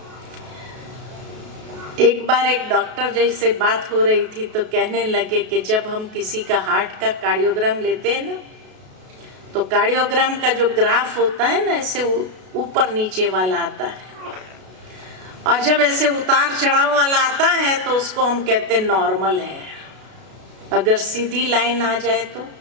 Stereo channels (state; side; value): late; left; 32 ms